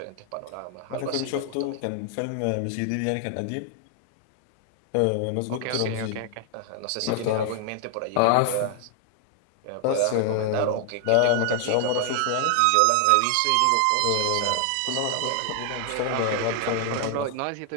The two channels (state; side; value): different; both; correlation 0.00